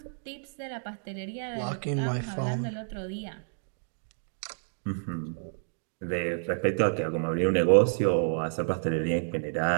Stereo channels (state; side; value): silent; left; digital silence